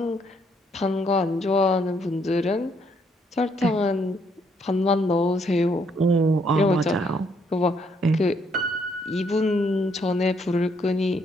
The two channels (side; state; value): both; normal; correlation 0.71